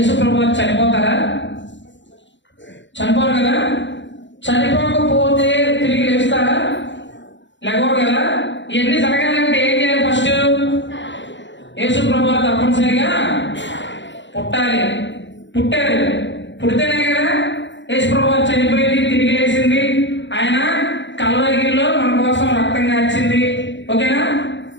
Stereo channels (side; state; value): right; late; 0.53 ms